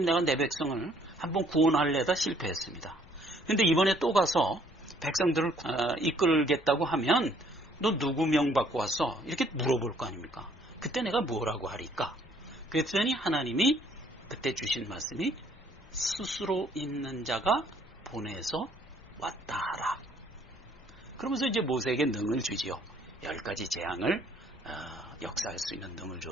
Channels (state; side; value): normal; both; correlation 0.62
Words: 내가 내 백성을 한번 구원하려다 실패했습니다. 근데 이번에 또 가서 백성들을 이끌겠다고 하면 너 누구 명 받고 왔어? 이렇게 물어볼 거 아닙니까? 그때 내가 뭐라고 하리까? 그랬더니 하나님이 그때 주신 말씀이 스스로 있는 자가 보내서 왔다 하라. 그러면서 이제 모세에게 능을 주지요. 10가지 재앙을 역사할 수 있는 능을